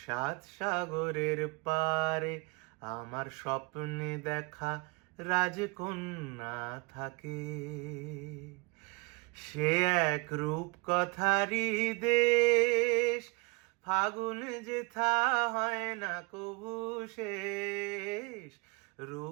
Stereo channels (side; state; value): left; quieter; 29.4 dB